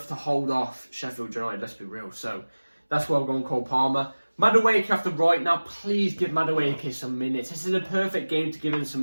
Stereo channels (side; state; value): both; inverted; correlation -1.00